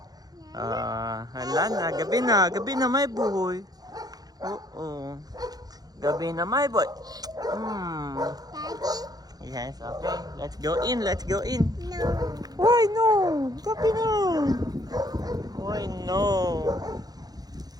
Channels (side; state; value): left; late; 0.19 ms